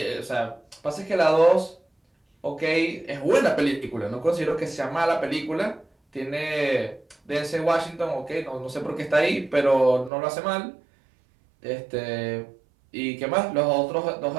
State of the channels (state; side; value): drops out; left; at 10.1 s